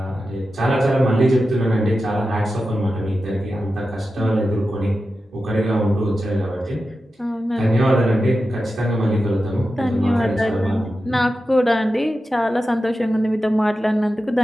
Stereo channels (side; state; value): both; normal; correlation 0.92